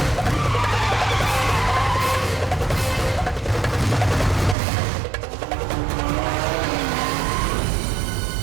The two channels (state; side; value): drops out; left; at 4.5 s